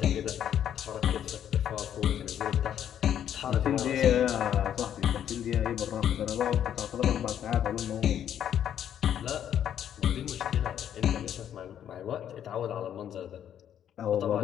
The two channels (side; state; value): right; quieter; 9.9 dB